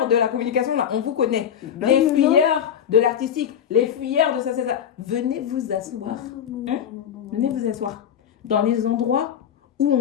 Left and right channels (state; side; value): quieter; right; 9.1 dB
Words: de la communication là, on vous connaît. Non, Les non, fuyeurs de l'artistique, les fuyeurs de ça. Venez vous asseoir. Venez vous asseoir. Dans les endroits où